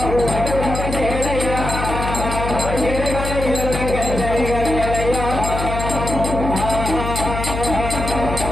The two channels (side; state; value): left; noise; hum, 4 dB below the sound